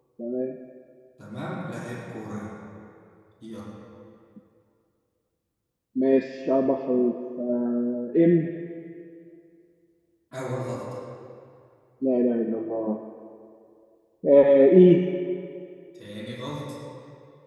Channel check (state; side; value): identical; both; correlation 1.00